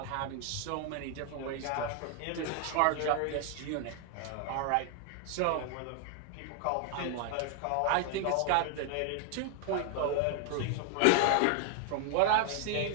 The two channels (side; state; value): both; different; correlation 0.00